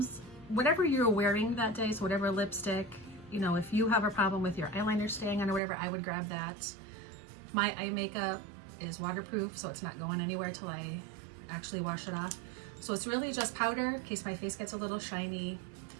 whatever you're wearing that day, so whatever lipstick, you know, if you have a problem with your eyeliner staying on or whatever, I would grab that. My eye makeup is waterproof, so it's not going anywhere till I actually wash it off. So it's really just powder in case my face gets a little shiny,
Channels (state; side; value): drops out; left; at 5.6 s